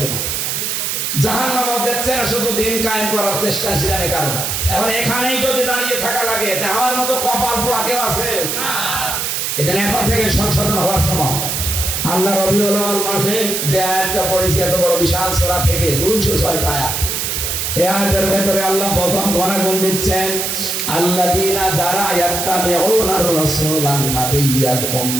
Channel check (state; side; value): noise; right; hiss, 1 dB below the sound